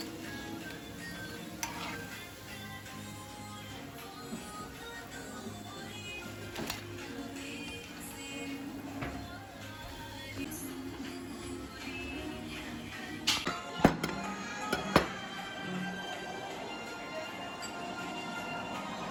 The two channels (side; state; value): both; identical; correlation 1.00